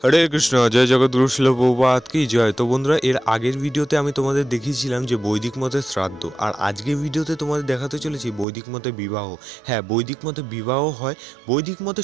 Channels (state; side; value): drops out; left; at 8.5 s